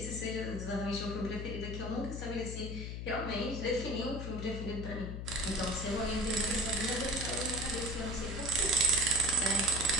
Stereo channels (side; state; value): left; noise; hum, 5 dB below the sound